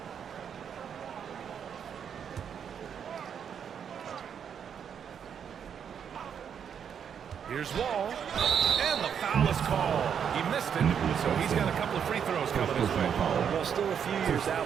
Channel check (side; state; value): left; quieter; 7.9 dB